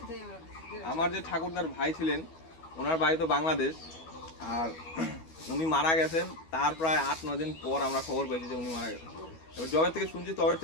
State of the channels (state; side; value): late; right; 12 ms